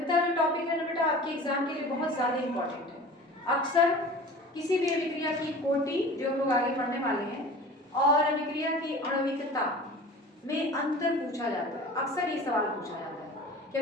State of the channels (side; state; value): both; normal; correlation 0.39